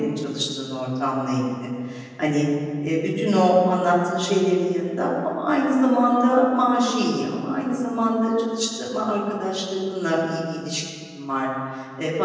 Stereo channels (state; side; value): identical; both; correlation 1.00